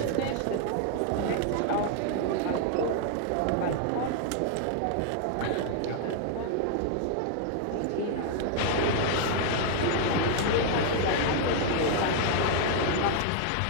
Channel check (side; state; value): both; different; correlation 0.00